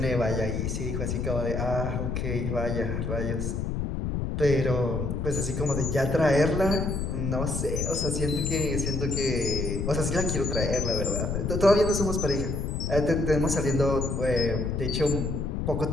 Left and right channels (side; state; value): left; noise; rumble, 2 dB below the sound